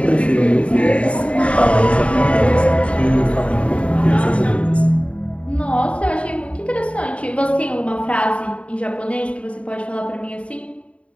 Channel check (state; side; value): late; right; 0.062 ms